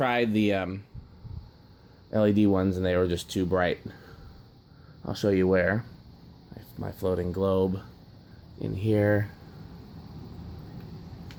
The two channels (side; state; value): both; identical; correlation 1.00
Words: the LED ones and they were just too bright. I'll show you where. My floating globe in here.